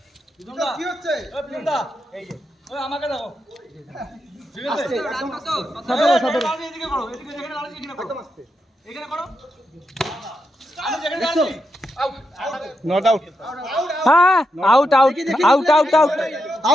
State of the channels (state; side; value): normal; both; correlation 0.85